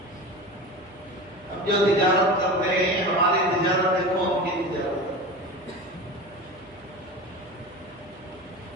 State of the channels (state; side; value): noise; right; hum, 28 dB below the sound